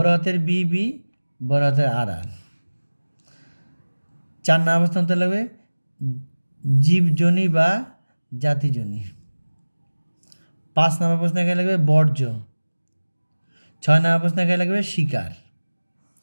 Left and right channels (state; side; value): inverted; both; correlation -1.00